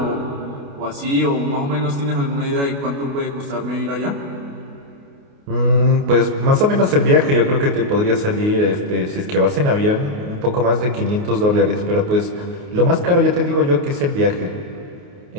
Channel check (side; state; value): left; late; 28 ms